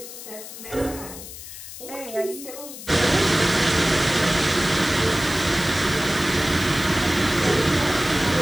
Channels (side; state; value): left; noise; hiss, 13 dB below the sound